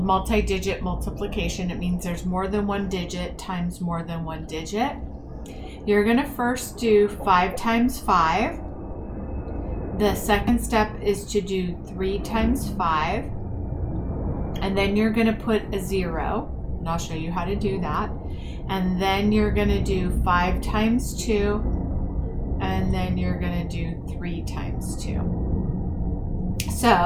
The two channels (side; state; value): both; identical; correlation 1.00